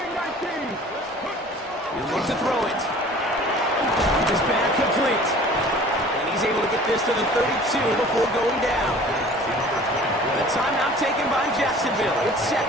19. He'll look to throw it. Just back complete. And he's able to get this to the 32 before going down. The timeout taken by Jacksonville. It's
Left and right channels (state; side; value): normal; both; correlation 0.47